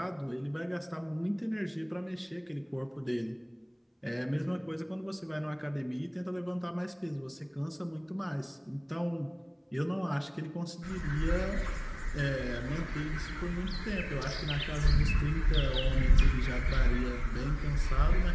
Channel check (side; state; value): both; identical; correlation 1.00